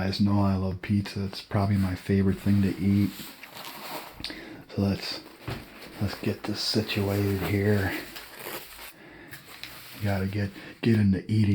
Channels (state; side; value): identical; both; correlation 1.00